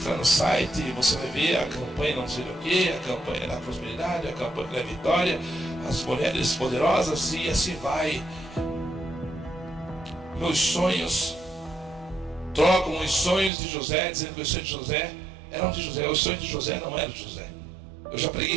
no site, você vai ver a campanha não sei do que, a campanha da prosperidade, a campanha da vitória, as mulheres poderosas, e assim vai. Meus sonhos trocam os sonhos de José, dizendo que os sonhos de José eram de José. Os sonhos de José não eram de José. Eu já preguei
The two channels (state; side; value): drops out; left; at 13.5 s